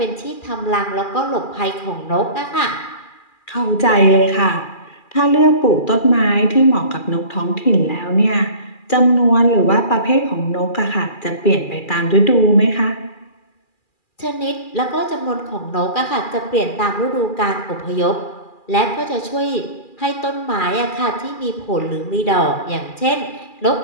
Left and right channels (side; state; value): right; late; 2.4 ms